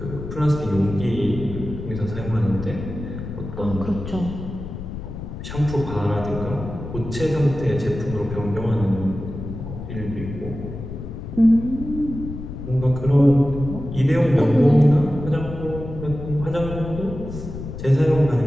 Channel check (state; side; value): noise; left; rumble, 9 dB below the sound